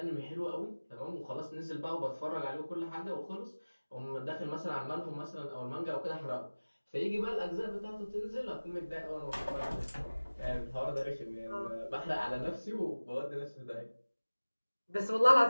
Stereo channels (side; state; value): both; inverted; correlation -1.00